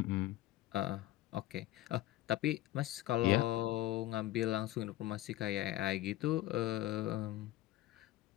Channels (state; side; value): quieter; right; 15.5 dB